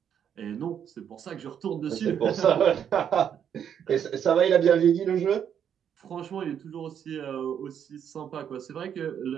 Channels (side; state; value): left; quieter; 8.6 dB